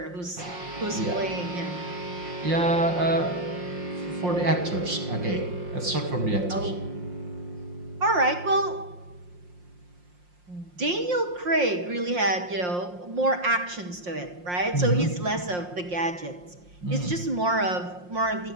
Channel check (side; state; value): left; late; 5.6 ms